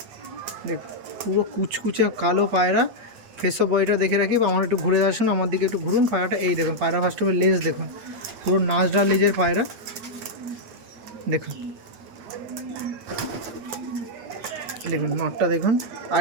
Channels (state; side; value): late; left; 8.7 ms